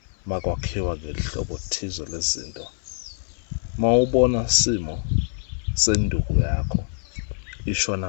makwakhiwa ngelihlobo thize lezinto. Mawubona simo senduku yakho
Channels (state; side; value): silent; right; 62 dB below the other